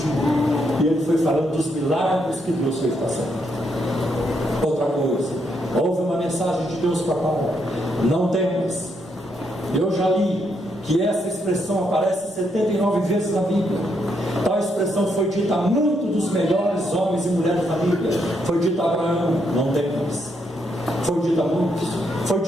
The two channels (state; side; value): normal; both; correlation 0.77